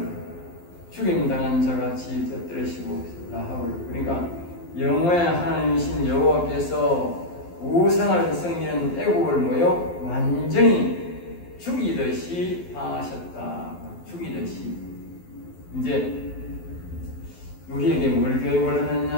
죽임당한 자같이 터뜨리시고 라합을 그러니까 영혼의 하나님이신 여호와께서 우상을 섬기는 애국을 뭐요? 완전히 죽이듯이 하셨다. 죽이듯이. 이제 우리에게 뭘 교육을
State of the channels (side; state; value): right; late; 12 ms